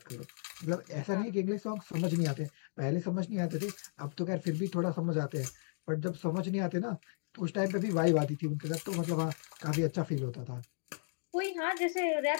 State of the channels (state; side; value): silent; right; digital silence